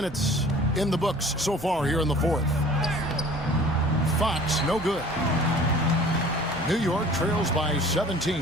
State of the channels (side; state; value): right; noise; hum, 19 dB below the sound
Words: in the books so far here in the fourth. Fox, no good. New York trails by 17.